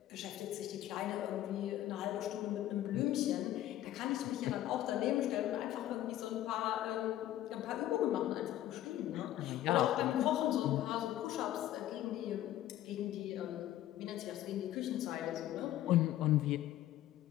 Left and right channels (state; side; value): quieter; right; 13.4 dB